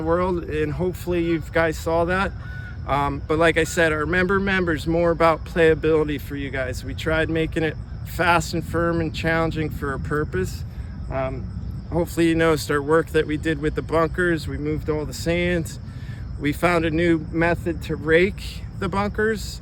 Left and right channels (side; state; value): both; identical; correlation 1.00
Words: world, and hopefully you guys saw that. But like I said, our member's more about playability for you guys. We tried making it fast and firm and challenging for a purpose. Hopefully you noticed our work that we did with the bunkers. We moved all the sands. We found a new method to rake the bunkers,